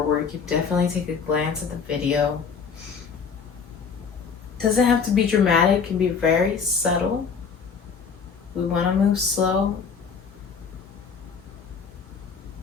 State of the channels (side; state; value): right; quieter; 5.9 dB